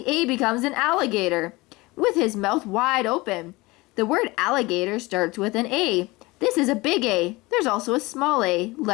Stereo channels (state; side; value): quieter; right; 22.3 dB